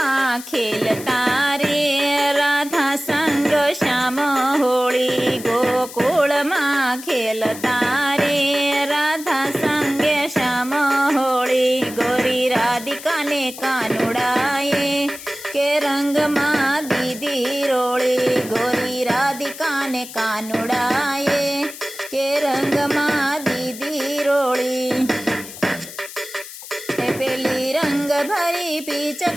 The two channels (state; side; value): noise; left; hiss, 14 dB below the sound